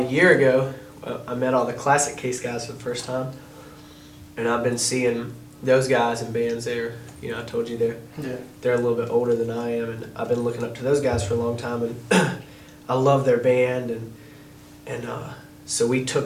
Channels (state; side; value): identical; both; correlation 1.00